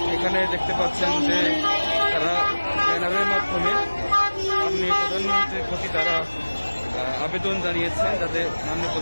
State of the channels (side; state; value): both; inverted; correlation -1.00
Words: এখানে দেখতে পাচ্ছেন যে তারা ব্যানারের মাধ্যমে মাননীয় প্রধানমন্ত্রীর প্রতি তারা আবেদন জানিয়েছেন যাতে মাননীয়